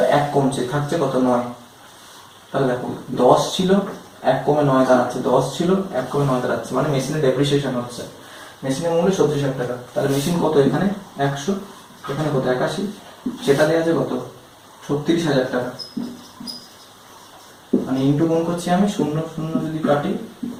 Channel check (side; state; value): both; identical; correlation 1.00